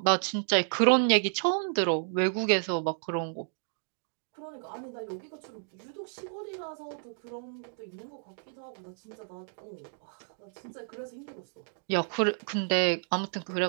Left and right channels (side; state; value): left; silent; digital silence